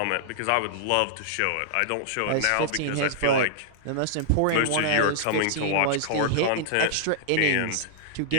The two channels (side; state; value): both; different; correlation -0.01